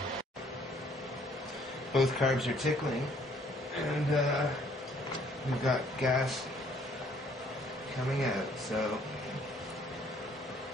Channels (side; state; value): both; normal; correlation 0.62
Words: Both carbs are tickling, and we've got gas coming out, so